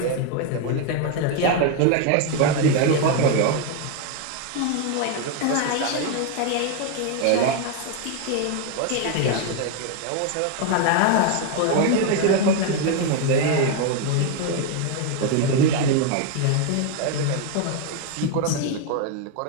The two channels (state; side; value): different; both; correlation 0.01